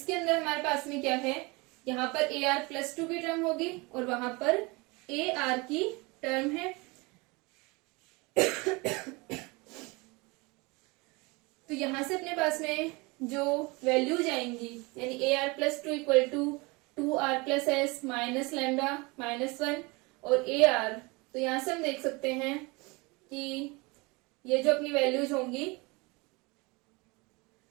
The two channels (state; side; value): quieter; left; 26.0 dB